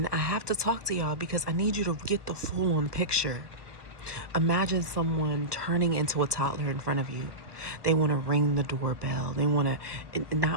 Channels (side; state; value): left; late; 1.3 ms